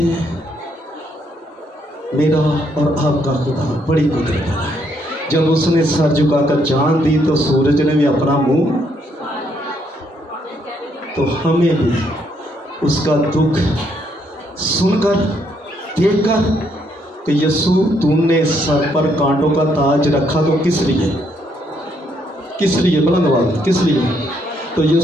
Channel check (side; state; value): both; normal; correlation 0.73